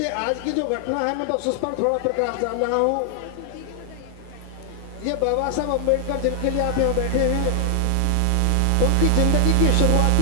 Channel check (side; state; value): both; different; correlation 0.00